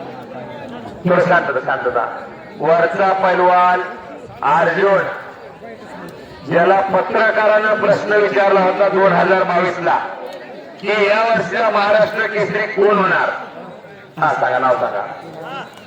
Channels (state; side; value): identical; both; correlation 1.00